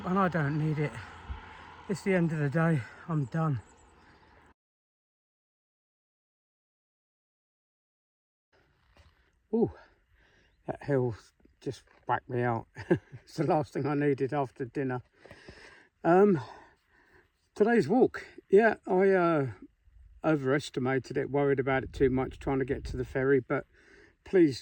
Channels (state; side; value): identical; both; correlation 1.00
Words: and I don't need it. It's the end of the day, I'm done. Ooh, that hill just whacked me out. It's the last thing I needed after dinner. Today's walk, yeah, I overestimated it, worried about it too much, trying to get to the ferry, but